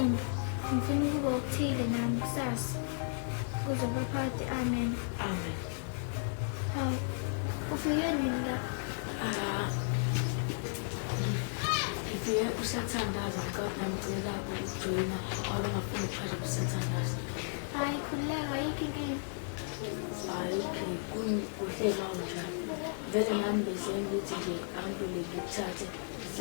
ngifuna ukuba okuthile nami kusasa, kuze baphakathi. Amen. Amen. Hawu, ufike nini la? Ngifike kusathandaza ngicela ukujoyina ngoba ngafuna ukuphasha kusathandaza. Hayi, khululeka, ayikho inkinga. Hayi, kuhle kanjani. Vele nami besengithi nje angibule ngikuthathe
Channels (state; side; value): silent; right; digital silence